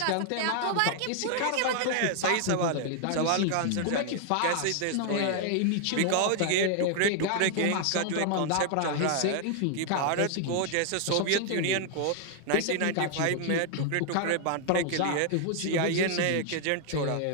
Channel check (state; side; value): different; both; correlation 0.00